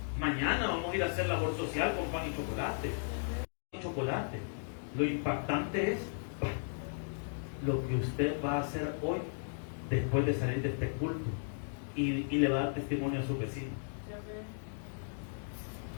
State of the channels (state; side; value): silent; right; digital silence